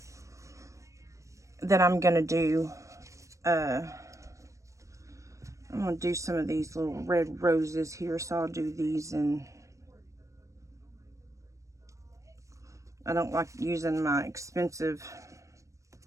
do. I'm gonna do some of these little red roses here, so I'll do these. And I don't like using my expensive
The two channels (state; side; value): late; left; 0.15 ms